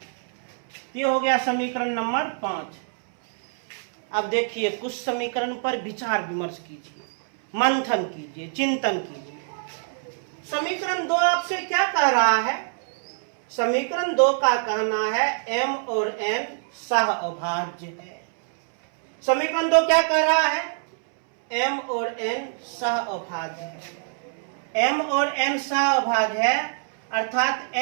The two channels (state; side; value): silent; left; 62 dB below the other